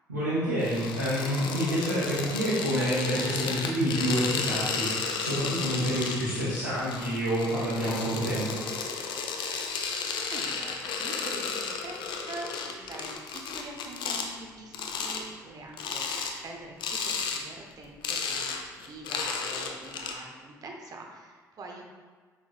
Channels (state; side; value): normal; both; correlation 0.41